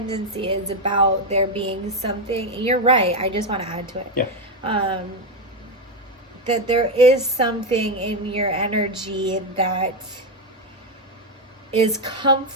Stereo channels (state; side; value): normal; both; correlation 0.07